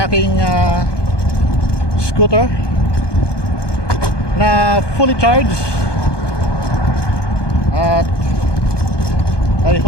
aking scooter na fully charged. At I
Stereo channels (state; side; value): late; right; 1.2 ms